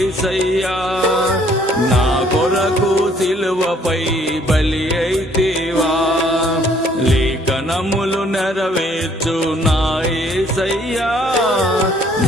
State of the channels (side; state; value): both; normal; correlation 0.62